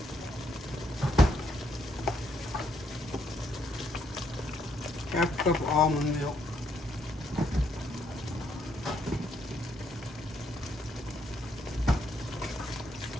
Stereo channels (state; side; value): normal; both; correlation 0.73